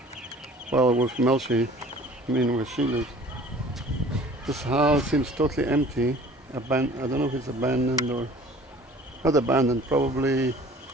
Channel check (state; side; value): normal; both; correlation 0.48